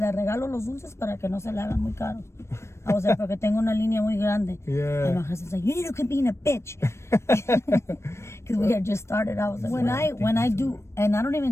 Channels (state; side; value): late; right; 0.13 ms